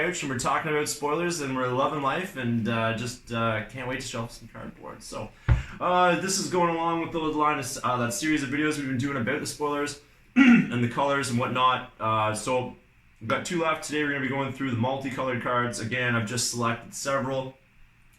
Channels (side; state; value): both; identical; correlation 1.00